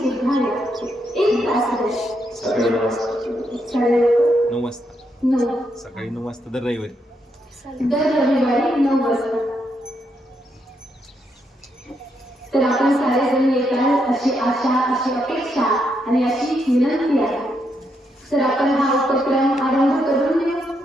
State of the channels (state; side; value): normal; both; correlation 0.79